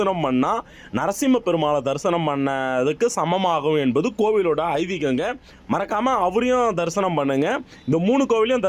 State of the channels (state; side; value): identical; both; correlation 1.00